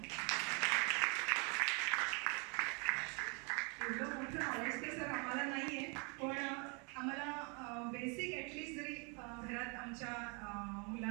एवढं मोठं नॉलेज तर सर आम्हाला नाहीये, पण आम्हाला बेसिक ॲटलिस्ट जरी घरात आमच्या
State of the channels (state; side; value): quieter; left; 34.0 dB